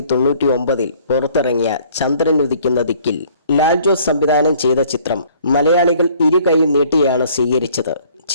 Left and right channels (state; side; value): inverted; both; correlation -0.57